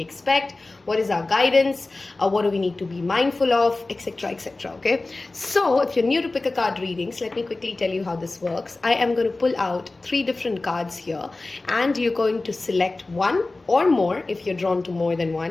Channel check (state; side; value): quieter; right; 3.2 dB